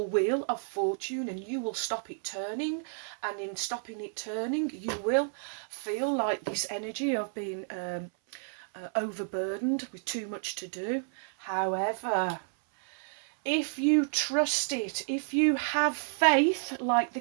wheel of fortune, and you will stop it turning, and in stopping it turning you will feel like this energy of being overburdened with too much to do. However, if you trust it, if you have faith like the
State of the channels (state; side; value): silent; left; 57 dB below the other